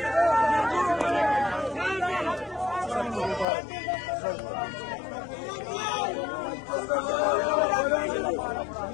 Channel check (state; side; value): drops out; right; at 3.5 s